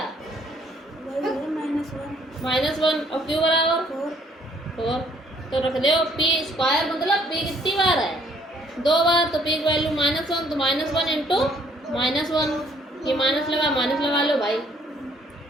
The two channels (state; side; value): normal; both; correlation 0.63